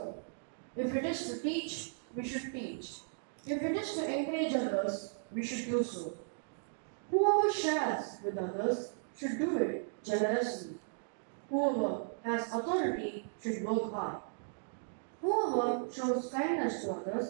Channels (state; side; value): silent; left; digital silence